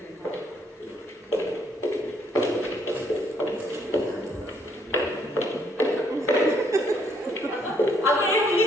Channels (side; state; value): both; normal; correlation 0.68